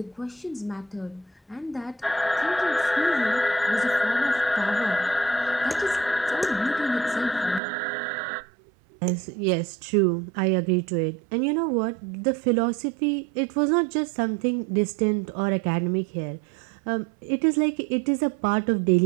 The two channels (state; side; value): drops out; left; at 7.6 s